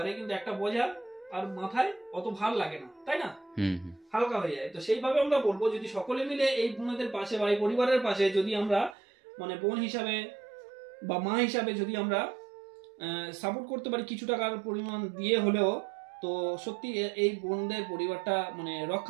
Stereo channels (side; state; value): left; drops out; at 9.0 s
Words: কিন্তু একটা বোঝা আর মাথায় অত ভাল লাগে না, তাই না? হালকা হয়ে যায়। তো সেইভাবে আমরা বলবো, যদি সকলে মিলে এই বোনেদের পাশে বা এই পরিবারের পাশে যদি আমরা মানে বোন হিসাবে বা মা হিসাবে যদি আমরা সাপোর্ট করতে পারি কিছু টাকার পরিমাণ দিয়ে হলেও, তো সত্যি এই বোনদের পরিবারটা মানে